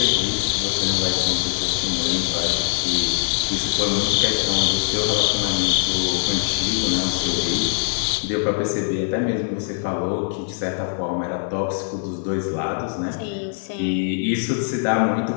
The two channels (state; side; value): silent; right; 64 dB below the other